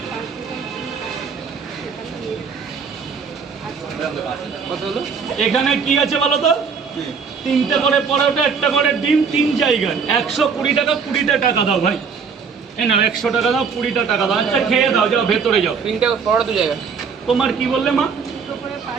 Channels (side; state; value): left; quieter; 5.9 dB